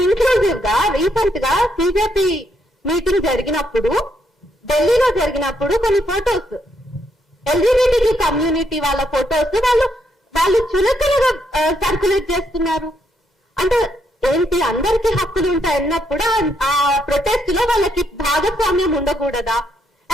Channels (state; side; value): normal; both; correlation 0.76